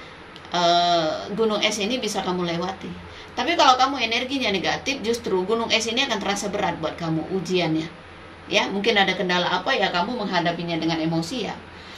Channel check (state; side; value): identical; both; correlation 1.00